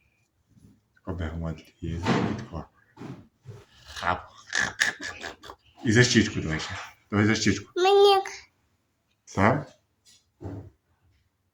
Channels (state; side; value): identical; both; correlation 1.00